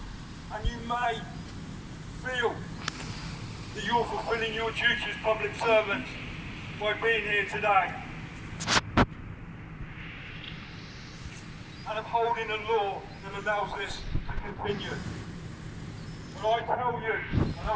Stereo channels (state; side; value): identical; both; correlation 1.00